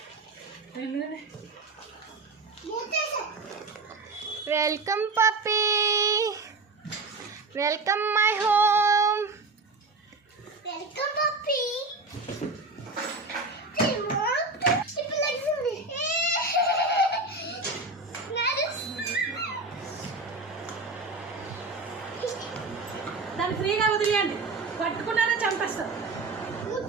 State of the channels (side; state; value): left; quieter; 3.6 dB